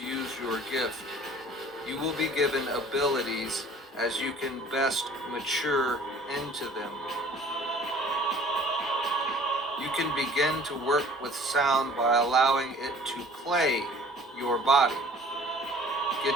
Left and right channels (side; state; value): both; normal; correlation 0.50